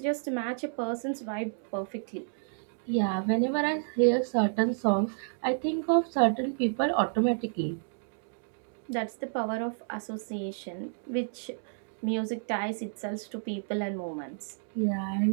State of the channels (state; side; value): silent; left; digital silence